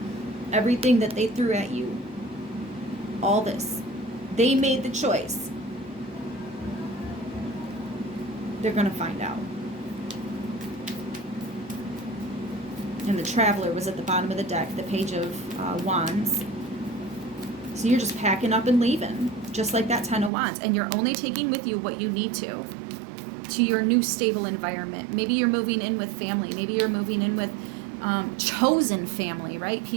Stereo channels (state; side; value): drops out; left; at 20.3 s